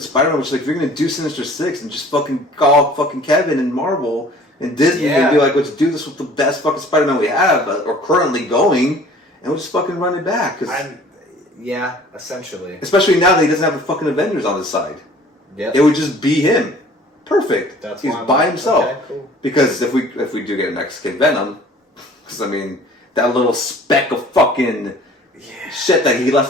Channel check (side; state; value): both; normal; correlation 0.50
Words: Spider-Man, which like if you're going to do Sinister Six and just fucking call fucking Kevin and Marvel and Disney and be like, let's do this with the best fucking Spider-Man we have or currently going, and we'll just fucking run it back. Yeah, essentially. Especially now that he doesn't have the fucking Avengers on his side. Yep. It would just be him. Perfect. He's by himself. Okay, cool. Because if we do get a Mexican Venom, because I mean that little speck of fucking shit that he